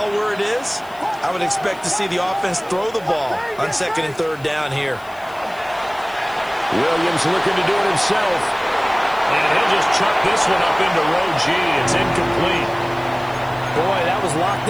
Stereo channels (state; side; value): noise; left; hiss, 25 dB below the sound